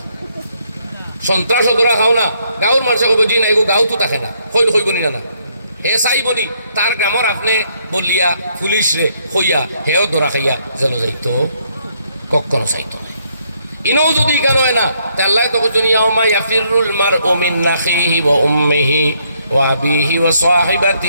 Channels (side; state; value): both; inverted; correlation -0.72